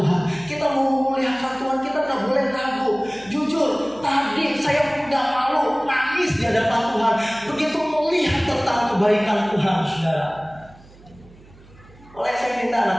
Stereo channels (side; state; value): right; noise; hum, 24 dB below the sound